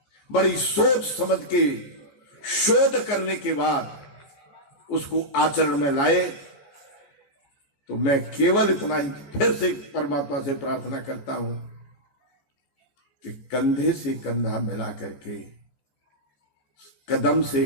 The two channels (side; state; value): right; late; 14 ms